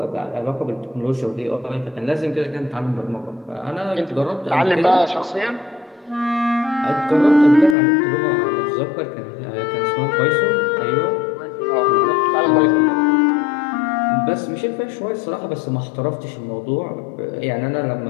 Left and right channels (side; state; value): right; drops out; at 7.8 s